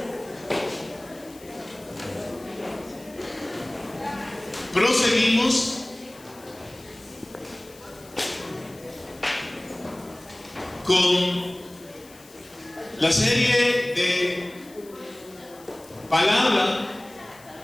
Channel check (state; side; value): noise; left; hiss, 23 dB below the sound